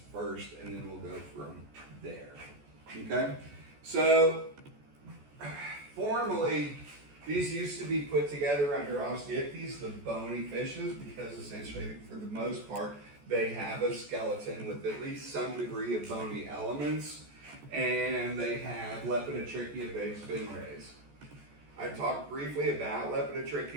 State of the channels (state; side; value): late; left; 14 ms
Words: first, and then we'll go from there. Okay? So, formally, these used to be put together under Osteichthyes, the bony fishes, because essentially, for the most part, they have a skeleton with at least some degree of bony elements, and they have Lepidotrychia-based fin rays. I talked briefly about